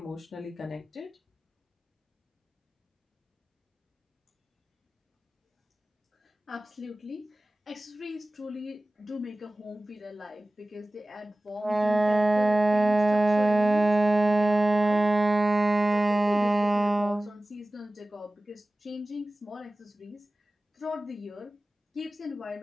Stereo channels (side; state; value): both; normal; correlation 0.97